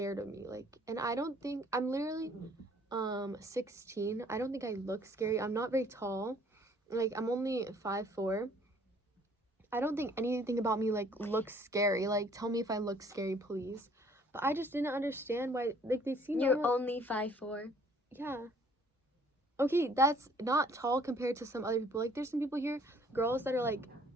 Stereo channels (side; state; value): both; normal; correlation 0.59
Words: of me, like, and I don't think I'm literally 16. I don't think I look scary. I'm not very tall, like I'm only 5'4". I don't think anything about me like looks scary. Like tell me if I look scary, please. But I just didn't understand why, like, they seem You're normal. only 5'4". Yeah. Okay, that's not tall compared to some other people. Like, there's some people here, girls that are, like,